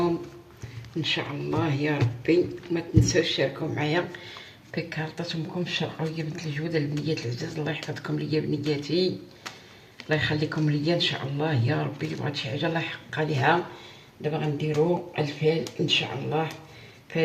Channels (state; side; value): identical; both; correlation 1.00